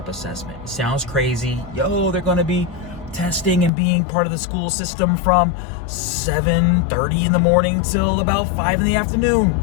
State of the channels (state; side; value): drops out; right; at 3.7 s